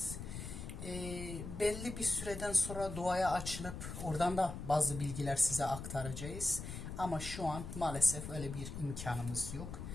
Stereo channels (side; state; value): left; noise; rumble, 8 dB below the sound